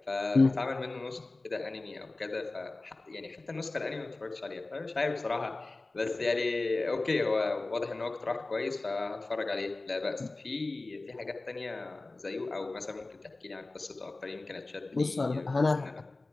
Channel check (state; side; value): quieter; right; 3.2 dB